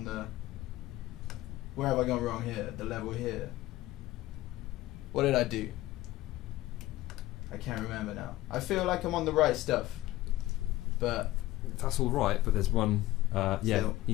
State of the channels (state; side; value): quieter; right; 16.7 dB